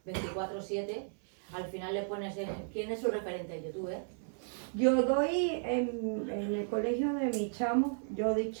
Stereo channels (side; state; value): left; silent; 55 dB below the other